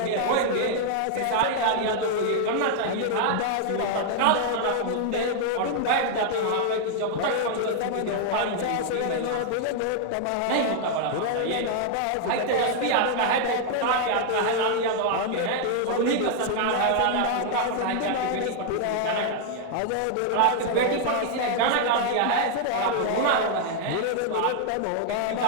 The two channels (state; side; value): different; both; correlation 0.00